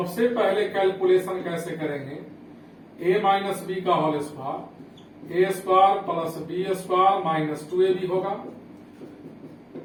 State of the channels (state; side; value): identical; both; correlation 1.00